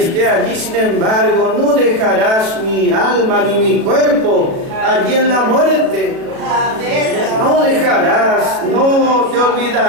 allí, sin embargo, no dejarás mi alma ni mi cuerpo allí en la muerte. No dejarás, no te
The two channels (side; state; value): left; late; 36 ms